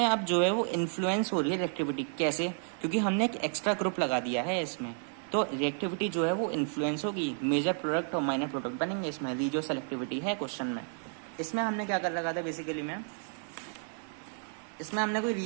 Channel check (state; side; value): silent; left; 57 dB below the other